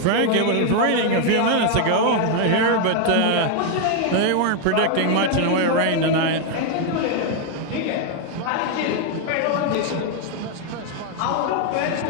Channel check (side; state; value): both; different; correlation 0.00